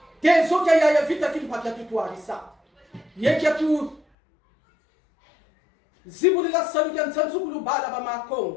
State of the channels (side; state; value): right; drops out; at 4.0 s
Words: Tezo kya ya vita kimpa kya tutuarisa. Ye kya tu. Zibulila salu kya nsansukulu bala ba